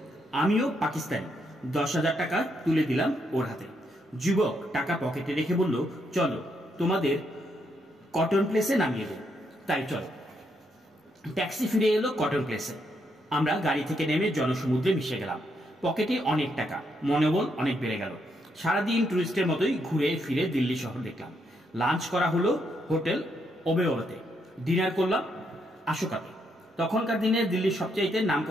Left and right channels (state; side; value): normal; both; correlation 0.77